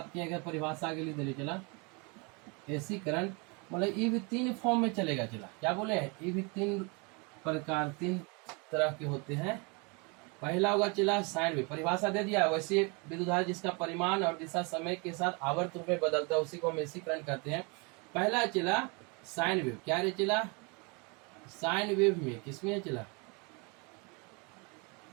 किया गया, परिभाषा आगे लिख दे चला। एसी करंट मतलब ये भी 3 फॉर्म में चलेगा। चला क्या बोले हैं, ये भी 3 प्रकार 3 तरह के होते हैं, पहला होगा चला साइन वेव, परिभाषा दे दिया। वैसे विद्युत धारा जिसका परिमाण और दिशा समय के साथ आवर्त रूप में बदलता है उसी को हम एसी करंट कहते हैं। पहला चला साइन वेव, क्या रे चला साइन वेव में, किसमें चला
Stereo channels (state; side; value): quieter; left; 30.9 dB